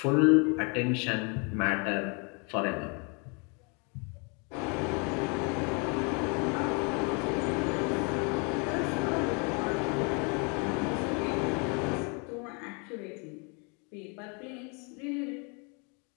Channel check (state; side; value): quieter; right; 34.2 dB